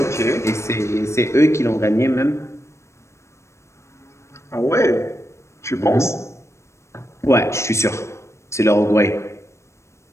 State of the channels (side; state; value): right; late; 0.13 ms